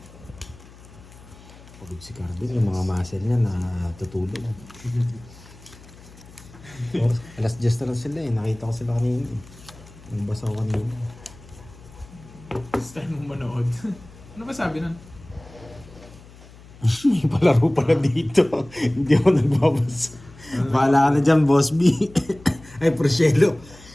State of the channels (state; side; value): noise; left; hum, 21 dB below the sound